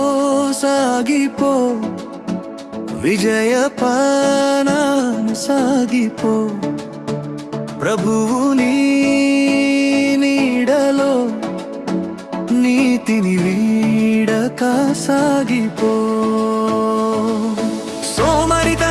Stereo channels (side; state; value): both; identical; correlation 1.00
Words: సాగిపో విజయ పానాన సాగిపో ప్రభువు నీ నీడలో నీతిని వీడక సాగిపో